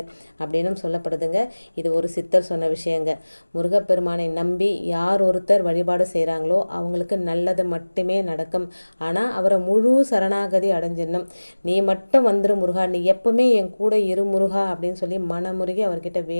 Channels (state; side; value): inverted; both; correlation -1.00